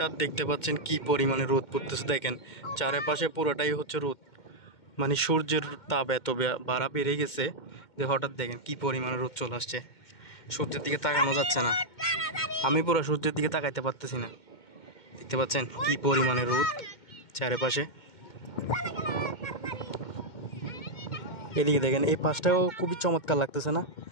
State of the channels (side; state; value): right; late; 2.1 ms